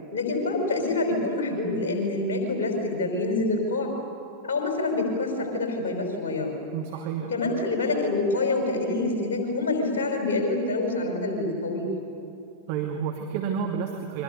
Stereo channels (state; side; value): normal; both; correlation -0.16